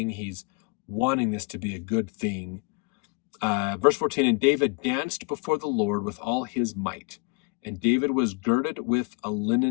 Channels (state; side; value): quieter; right; 30.8 dB